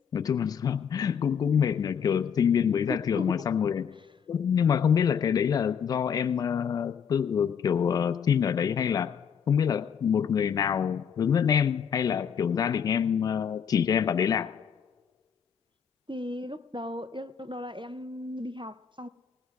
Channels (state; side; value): quieter; right; 7.3 dB